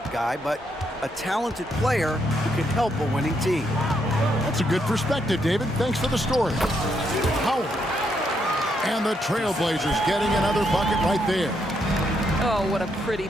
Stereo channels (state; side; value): normal; both; correlation 0.77